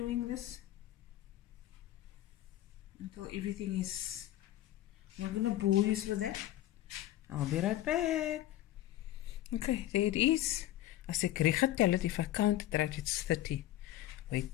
this until everything is. I'm not going to bore you with that. I'll be right back. Okay, there it is. As ek reg getel het, if I count it right, it's 30.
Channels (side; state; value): right; quieter; 14.2 dB